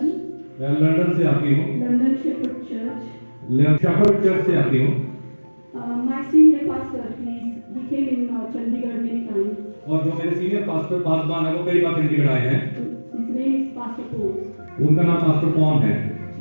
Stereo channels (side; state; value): both; inverted; correlation -1.00